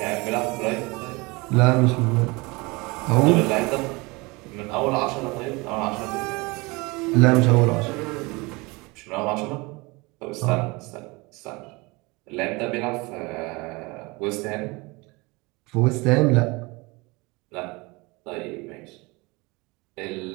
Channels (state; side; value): quieter; left; 25.3 dB